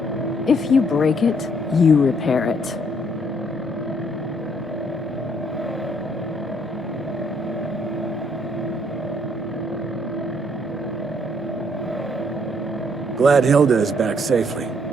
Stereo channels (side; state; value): both; normal; correlation 0.67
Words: If you break it, you repair it. Glad Hilda is back safely.